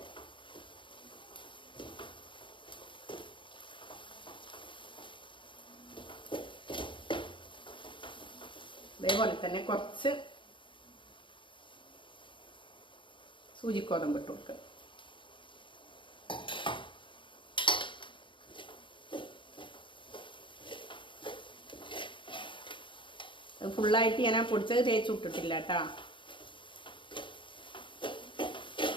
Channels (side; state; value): right; late; 0.24 ms